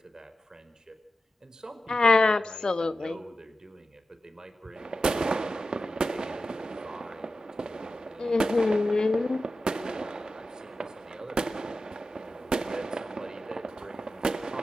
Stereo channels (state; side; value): normal; both; correlation 0.92